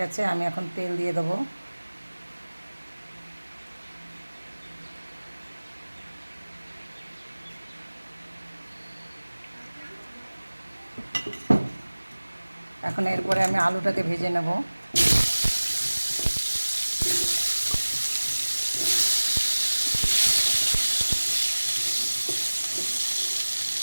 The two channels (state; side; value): inverted; both; correlation -1.00